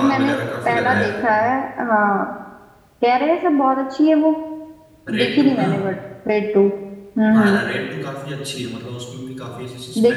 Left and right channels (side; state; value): both; identical; correlation 1.00